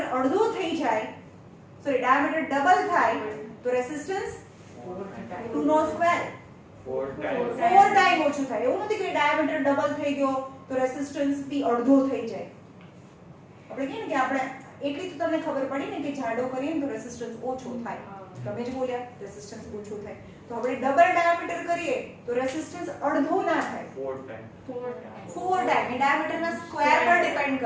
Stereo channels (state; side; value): identical; both; correlation 1.00